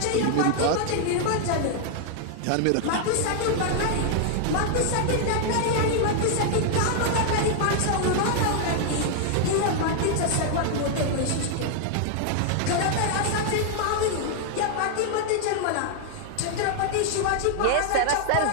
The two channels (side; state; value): both; different; correlation 0.00